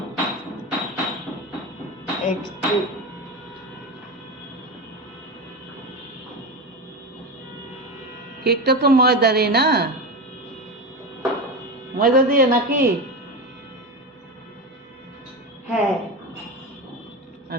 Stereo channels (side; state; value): both; normal; correlation 0.21